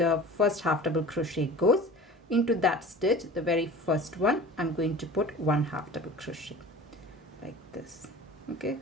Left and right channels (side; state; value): both; normal; correlation 0.39